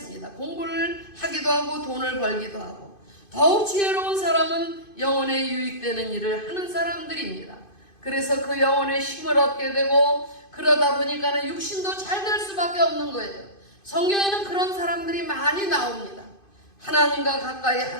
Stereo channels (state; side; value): late; right; 2.5 ms